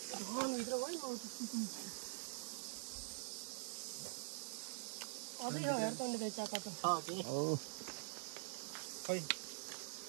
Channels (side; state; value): left; silent; digital silence